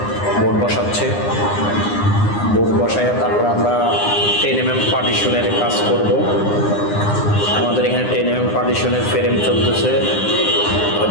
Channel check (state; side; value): late; right; 9.8 ms